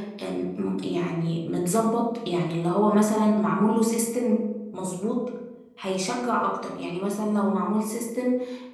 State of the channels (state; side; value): identical; both; correlation 1.00